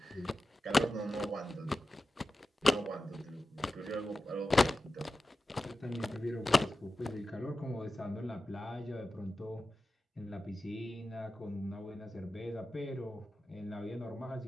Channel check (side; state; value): both; normal; correlation 0.93